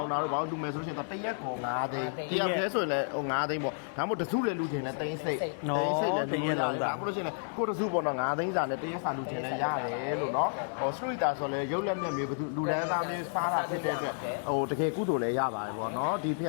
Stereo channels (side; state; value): right; silent; 57 dB below the other